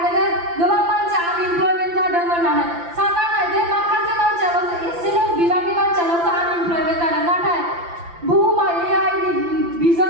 जे गोबां मानसि आनइमप्लयमेन्ट जादों होननानै सानना नाय जे माखासे मानसियाल'सो एसेल' बिबांनि मानसियाल'सो आनइमप्लयमेन्ट जादों नाथाय बुहुमा AI नि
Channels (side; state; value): left; late; 5.9 ms